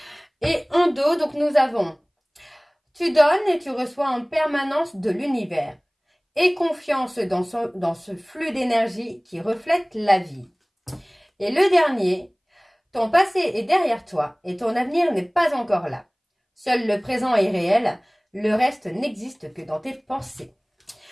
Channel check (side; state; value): both; identical; correlation 1.00